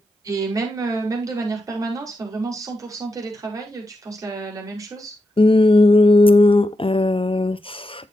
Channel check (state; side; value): normal; both; correlation 0.86